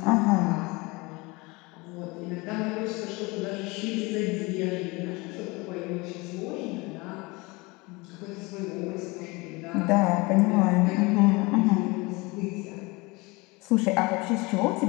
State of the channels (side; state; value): right; quieter; 24.9 dB